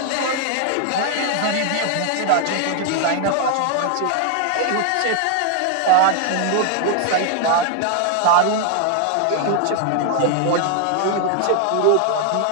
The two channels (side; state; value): both; different; correlation 0.00